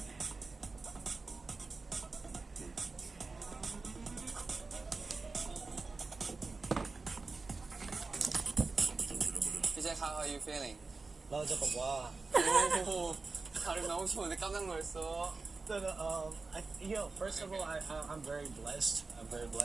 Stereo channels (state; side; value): quieter; left; 3.9 dB